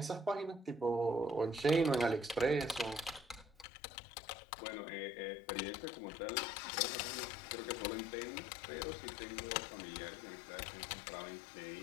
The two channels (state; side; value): drops out; right; at 3.7 s